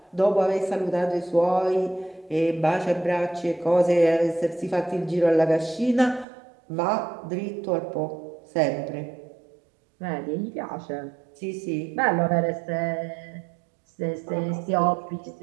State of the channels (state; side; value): drops out; left; at 6.2 s